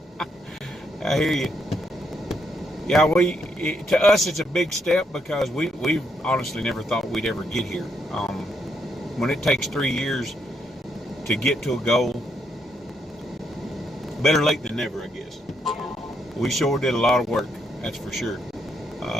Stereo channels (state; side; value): normal; both; correlation 0.76